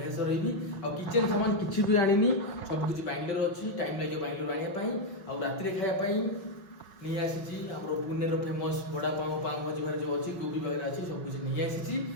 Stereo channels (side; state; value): right; late; 5.0 ms